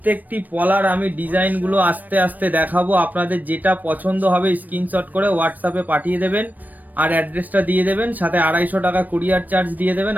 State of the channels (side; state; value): left; late; 0.084 ms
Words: পলার আমি ডিজাইনগুলো আস্তে আস্তে দেখাবো, আপনাদের যেটা পছন্দ হবে স্ক্রিনশট করে হোয়াটসঅ্যাপে পাঠিয়ে দেবেন আর অ্যাড্রেসটা দিয়ে দেবেন, সাথে 250 টাকা কুরিয়ার চার্জ দিয়ে দেবেন,